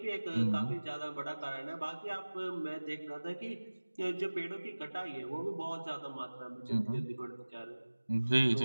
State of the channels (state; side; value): inverted; both; correlation -1.00